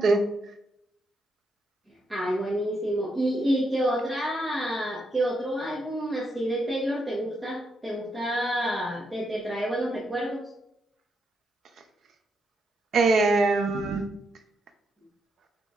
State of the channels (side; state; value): both; normal; correlation 0.80